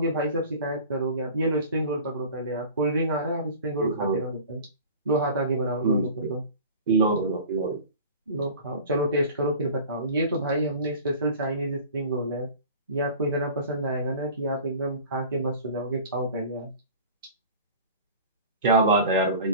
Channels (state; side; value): inverted; both; correlation -0.40